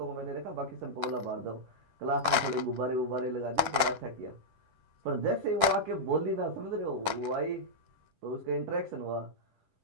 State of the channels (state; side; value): late; left; 10 ms